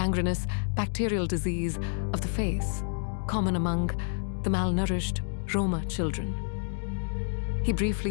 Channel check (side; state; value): right; silent; digital silence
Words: bacterial disease of the face, common among the malnourished Roma children. He